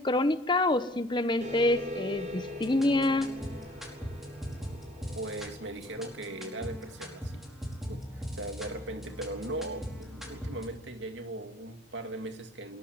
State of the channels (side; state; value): both; normal; correlation 0.53